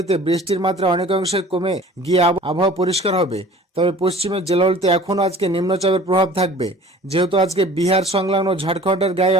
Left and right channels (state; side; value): normal; both; correlation 0.46